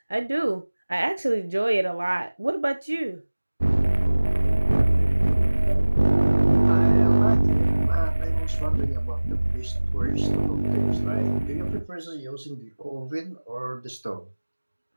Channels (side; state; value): both; inverted; correlation -1.00